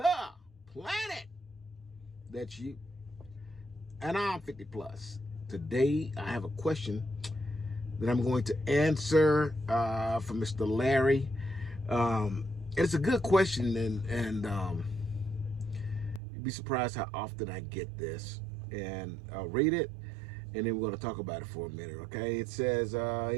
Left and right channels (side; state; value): left; drops out; at 16.2 s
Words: planet. That's you. And I'm 50 plus. Today I have a question that I'm going to answer from Mr. Larry. It's a good question, and you'd be surprised how often I get this. And I'll read it, and then we're going to talk about it for a minute, okay? It says,